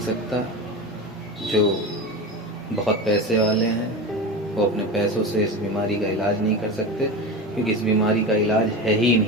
जो बहुत पैसे वाले हैं वो अपने पैसों से इस बीमारी का इलाज नहीं कर सकते, क्योंकि इस बीमारी का इलाज है ही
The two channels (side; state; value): both; normal; correlation 0.25